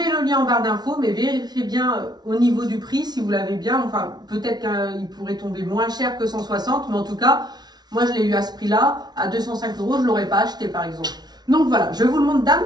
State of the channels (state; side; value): late; left; 0.19 ms